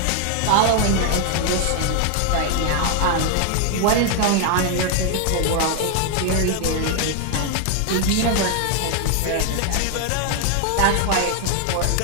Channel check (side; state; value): both; different; correlation 0.00